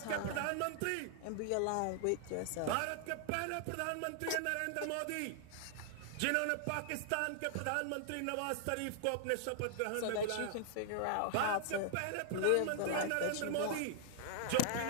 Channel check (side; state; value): both; different; correlation -0.01